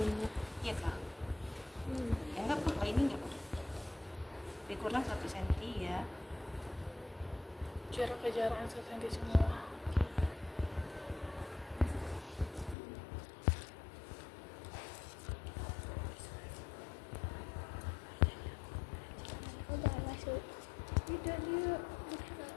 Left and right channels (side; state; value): right; drops out; at 12.8 s